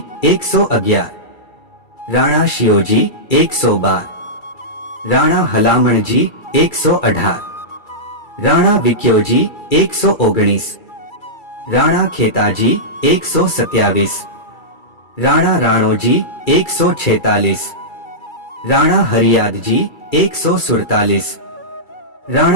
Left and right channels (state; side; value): late; right; 2.3 ms